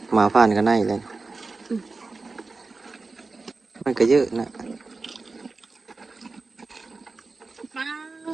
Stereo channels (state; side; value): quieter; left; 3.9 dB